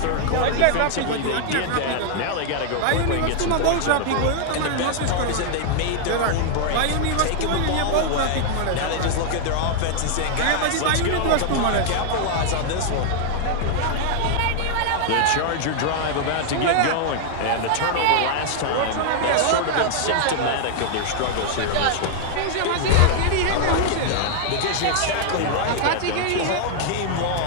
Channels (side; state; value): both; different; correlation 0.00